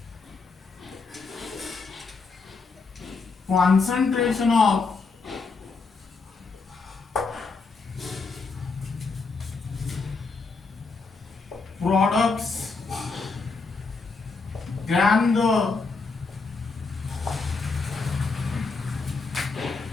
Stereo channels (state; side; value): quieter; right; 4.3 dB